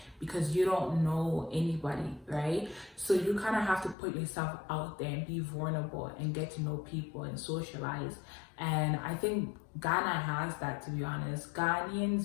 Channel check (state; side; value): drops out; right; at 4.0 s